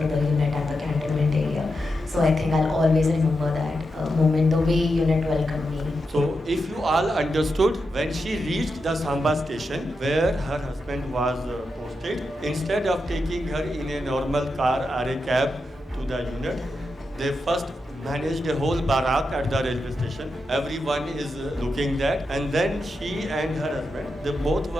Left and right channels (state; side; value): normal; both; correlation 0.87